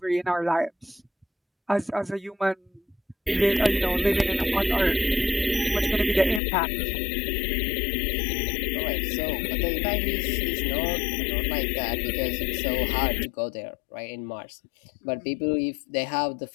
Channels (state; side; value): drops out; right; at 6.4 s